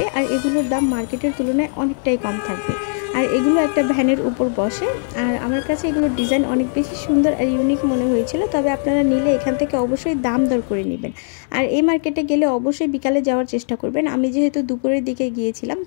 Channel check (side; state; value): right; silent; digital silence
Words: আর এগুলোর দাম মার্কেটের তুলনায় অনেকটাই কম থাকবে। আর এগুলো একটা ভ্যানের উপর বসে। আর আমার কাছে এগুলোর ডিজাইন অনেক বেশি সুন্দর আর ইউনিক মনে হয়েছিল। তবে আপনারা নিলে এখান থেকে অবশ্যই দাম দর করে নেবেন। আর এই মার্কেটে গেলে অবশ্যই বিকালে যাওয়ার চেষ্টা করবেন। আমি যেহেতু দুপুরের দিকে গিয়েছিলাম